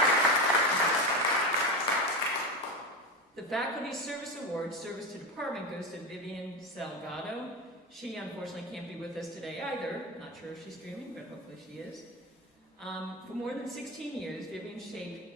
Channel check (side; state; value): both; normal; correlation 0.20